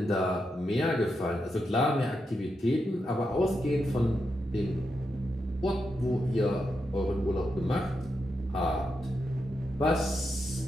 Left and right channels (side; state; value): both; normal; correlation 0.85